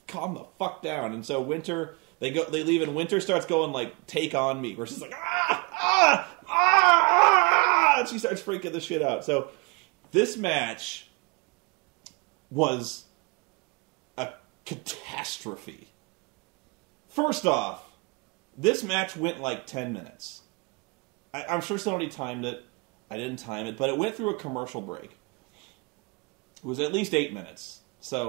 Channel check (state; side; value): quieter; left; 28.8 dB